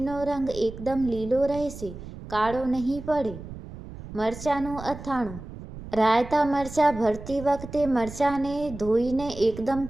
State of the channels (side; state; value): right; noise; rumble, 13 dB below the sound